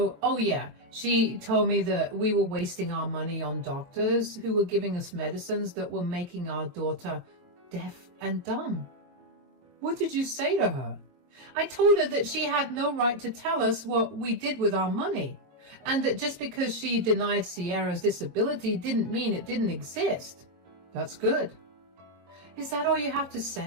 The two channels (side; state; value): left; late; 22 ms